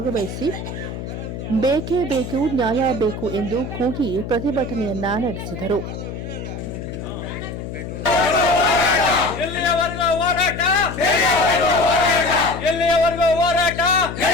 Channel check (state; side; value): noise; left; hum, 8 dB below the sound